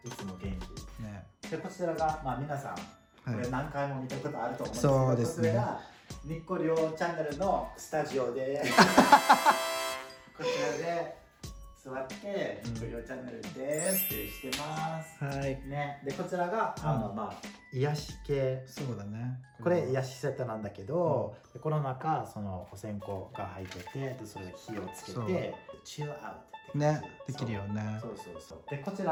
いつも元気。ね。でこちらが皆さんこれ何回も見たことあると思うんですけど、そうですね。これがニッコリョウチャンネルのスタジオでこちらで座ってニコリオチャンネルですってしてますはいね。でこちらが癒し系。そうだねこれ癒しセットなんだけど、でこの中そのお線香が入ってて、でそれで火をつけてチルアウトねできるよね。そうそうそう。でこち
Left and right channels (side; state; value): both; identical; correlation 1.00